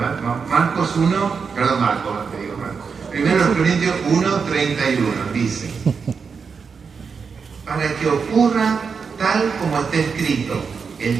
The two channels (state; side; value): quieter; left; 5.6 dB